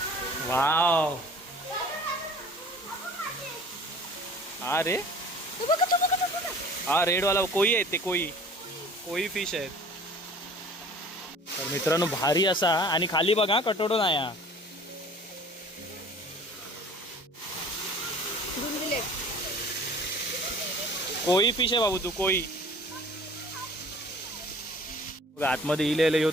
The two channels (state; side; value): normal; both; correlation 0.47